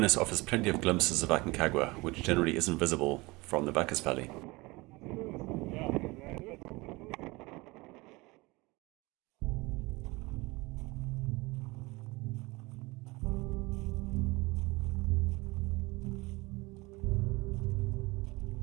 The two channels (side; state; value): left; quieter; 23.3 dB